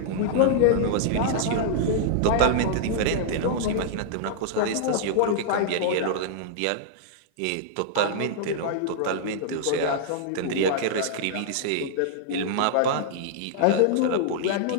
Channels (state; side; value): different; both; correlation -0.01